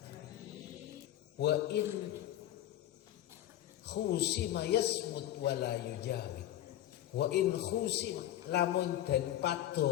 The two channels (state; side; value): quieter; right; 12.8 dB